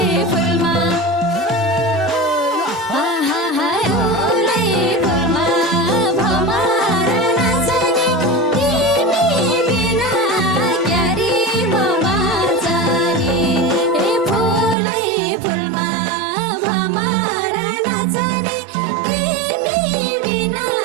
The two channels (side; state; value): left; drops out; at 14.8 s